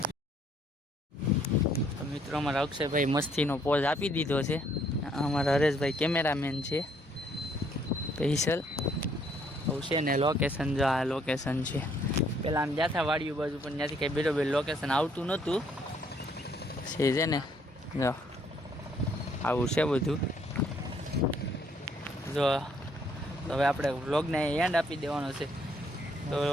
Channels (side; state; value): both; normal; correlation 0.67